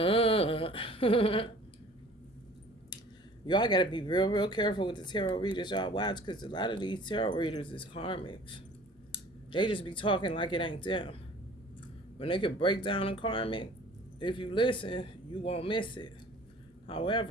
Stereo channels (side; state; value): both; normal; correlation 0.49